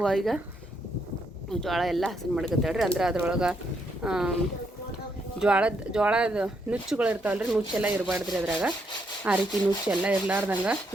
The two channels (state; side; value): normal; both; correlation 0.76